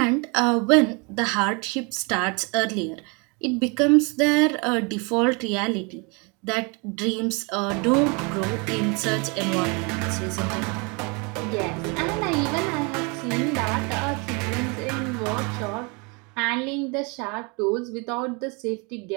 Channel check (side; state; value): left; quieter; 31.3 dB